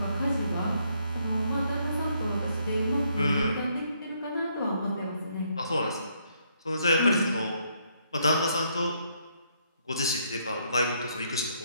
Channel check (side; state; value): both; inverted; correlation -0.72